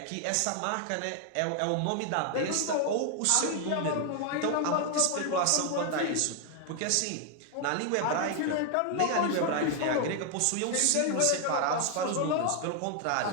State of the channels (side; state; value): both; different; correlation 0.00